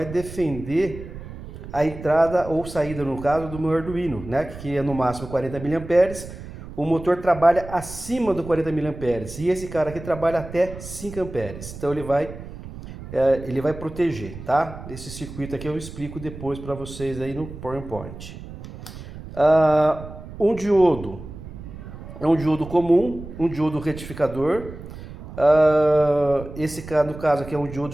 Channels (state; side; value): noise; right; rumble, 13 dB below the sound